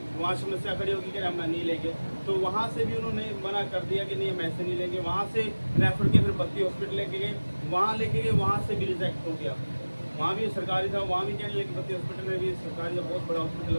वहाँ समस्या खड़ी होगी कि हम नहीं लेंगे, तो वहाँ से भी उन्होंने मना कर दिया कि नहीं हम ऐसे नहीं लेंगे। वहाँ से रेफर के फिर बत्ती हॉस्पिटल लेके गए, वहाँ लेके गए, वहाँ से भी रिजेक्ट हो गया। वहाँ भी सरकारी था, वहाँ भी कहने लगे, बत्ती हॉस्पिटल में भी सरकारी का बहुत बड़ा हॉस्पिटल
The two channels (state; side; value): inverted; both; correlation -1.00